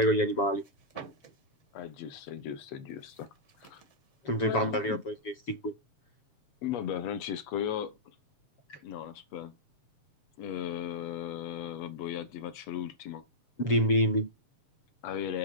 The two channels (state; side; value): late; right; 7.1 ms